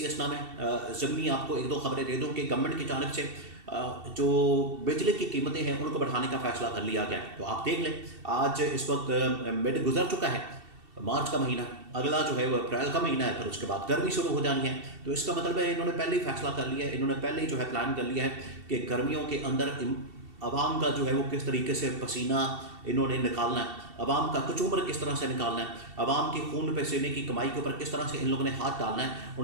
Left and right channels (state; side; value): late; left; 2.7 ms